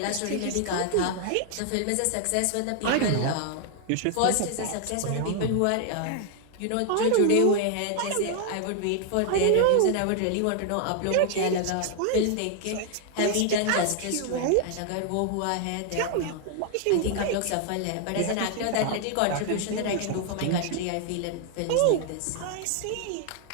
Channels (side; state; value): both; different; correlation 0.00